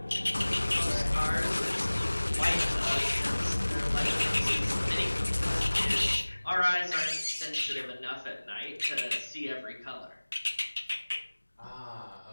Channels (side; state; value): both; inverted; correlation -1.00